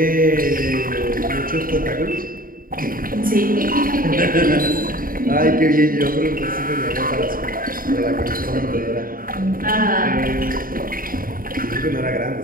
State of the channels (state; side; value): late; left; 0.41 ms